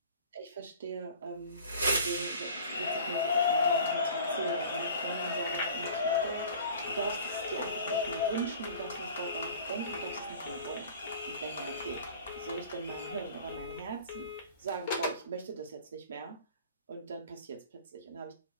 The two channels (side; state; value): both; inverted; correlation -0.44